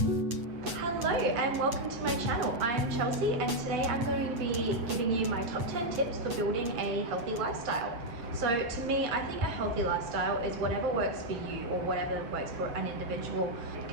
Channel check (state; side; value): late; left; 8.4 ms